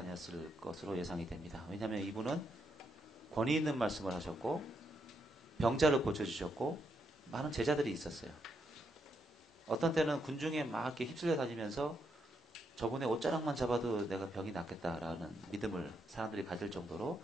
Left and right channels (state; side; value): normal; both; correlation 0.79